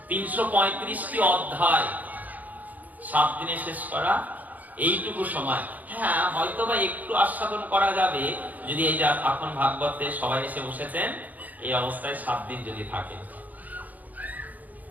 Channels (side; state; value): left; late; 0.080 ms